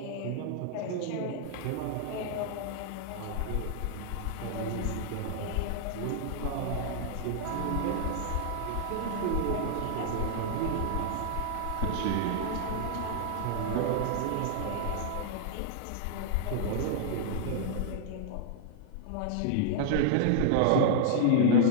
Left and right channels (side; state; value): both; different; correlation -0.01